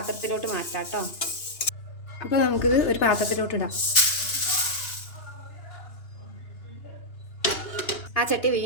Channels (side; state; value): right; late; 2.9 ms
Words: മാറ്റാം കേട്ടോ. അപ്പോൾ നമുക്കിത് ഒരു പാത്രത്തിലോട്ട് ഇടാം. ആ ചട്ടി